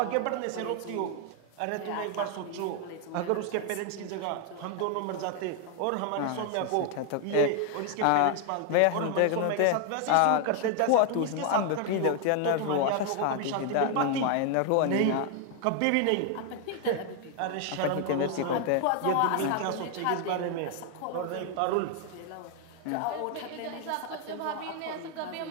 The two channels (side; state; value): both; different; correlation 0.00